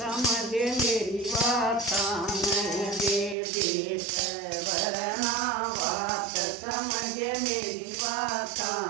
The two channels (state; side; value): drops out; left; at 3.4 s